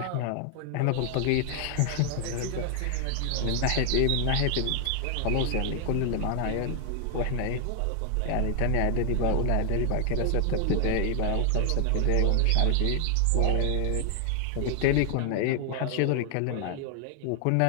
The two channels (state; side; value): different; both; correlation 0.00